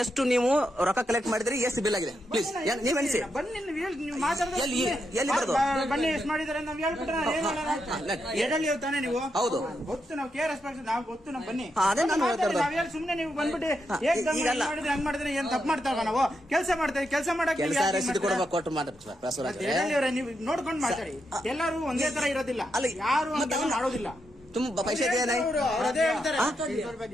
ಎಷ್ಟು ನೀವು ರೊಕ್ಕ ಕಲೆಕ್ಟ್ ಮಾಡಿದ್ರಿ ಎಷ್ಟು ಬಿಲ್ ಆಗಿದೆ ಪ್ಲೀಸ್ ನೀವ್ ಎಣಿಸಿ ಬನ್ನಿ ನೀವು ಮಾತಾಡ್ತಾ ಎಲ್ಲಿ ಬರೋದು ಬನ್ನಿ ಎಷ್ಟು ಮಾಡಿದಾರೆ ನಾವ್ ಹೇಳ್ಬಿಟ್ರೆ ಎಡಲ್ಲಿ ತಾನೆ ನೀವು ಹೌದು ಗೊತ್ತು ನಾವು ಕೇರ್ ನಾವು ಗೊತ್ತು ನಾವು ಬನ್ನಿ ಅದೇ ನಾನು ಹೇಳ್ತಾ ನಾವ್ ಹೇಳಿ ಸುಮ್ನೆ ನೀವು ಬಂದ್ಬಿಟ್ಟು ಮಾಡಿದ್ರೆ ಹಂಗ್ ಮಾಡಿದ್ರೆ ಏನ್ ತಪ್ಪು ಮಾಡ್ತಾವ ನಾವು ಕೆಲಸ ಮಾಡ್ತೇವೆ ಕೆಲಸ ಮಾಡಕ್ಕೆ ರಸೀದಿ ಕೊಡಬೇಕು ಕೊಟ್ಟು ಮಾಡಿ ಬಸವರಾಜ್ ನೀವು ನೋಡ್ಕೊಂಡು ಮಾತಾಡಿ ಎಲ್ಲರೂ ಒಂದೇ ತರ ಇರೋದಿಲ್ಲ ಯಾರು ಮಾಡೋದಿಲ್ಲ तुम पैसे दिया नहीं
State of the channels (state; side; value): normal; both; correlation 0.83